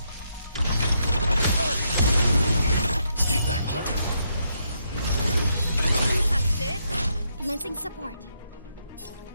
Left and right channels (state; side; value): inverted; both; correlation -0.78